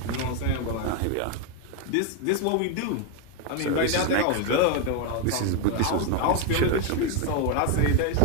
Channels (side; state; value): both; different; correlation 0.01